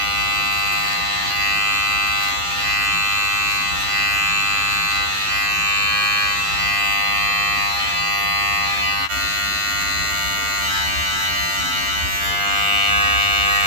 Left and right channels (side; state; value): left; late; 11 ms